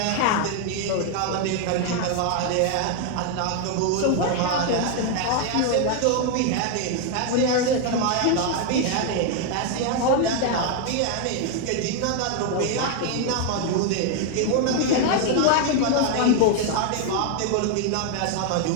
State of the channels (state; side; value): different; both; correlation 0.01